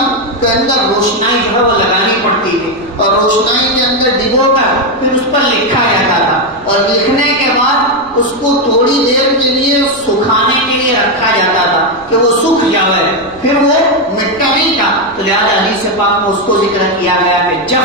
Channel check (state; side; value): noise; right; rumble, 26 dB below the sound